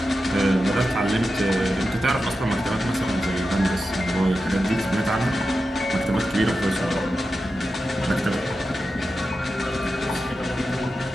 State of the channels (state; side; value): normal; both; correlation 0.91